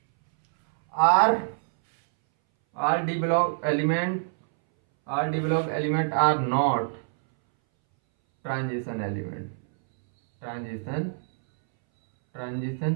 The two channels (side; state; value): left; silent; 61 dB below the other